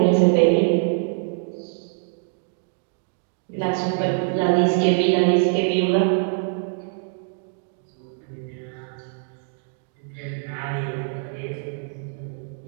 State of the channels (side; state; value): left; silent; digital silence